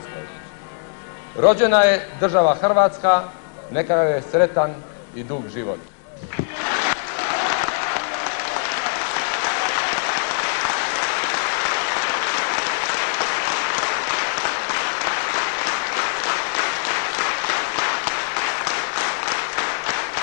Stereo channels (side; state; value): right; silent; digital silence